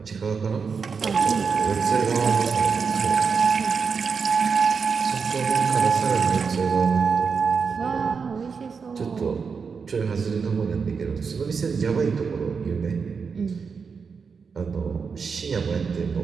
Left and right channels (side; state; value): left; quieter; 5.6 dB